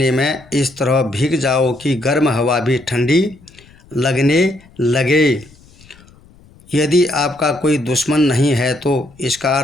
में इस तरह भीग जाओ कि गर्म हवा भी ठंडी लगने लगे। यदि आपका कोई दुश्मन नहीं है तो इसका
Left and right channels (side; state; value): left; noise; rumble, 26 dB below the sound